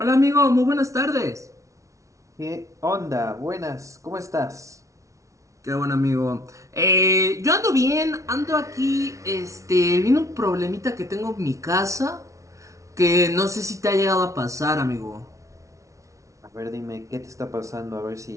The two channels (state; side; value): late; left; 0.15 ms